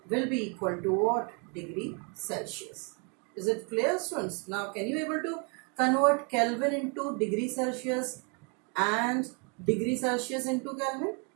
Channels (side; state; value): left; quieter; 34.9 dB